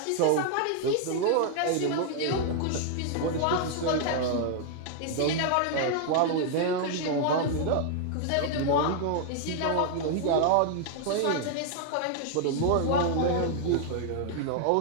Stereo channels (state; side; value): different; both; correlation 0.00